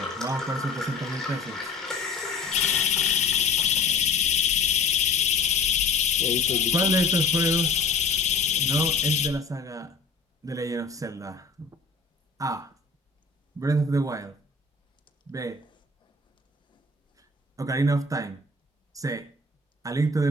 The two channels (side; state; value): right; quieter; 3.9 dB